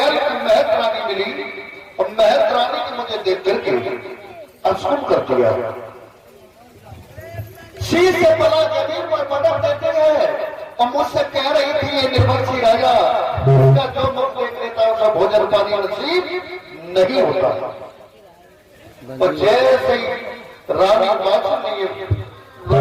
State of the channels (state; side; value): identical; both; correlation 1.00